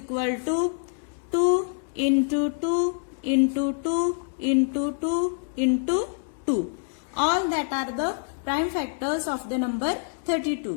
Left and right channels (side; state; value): right; silent; digital silence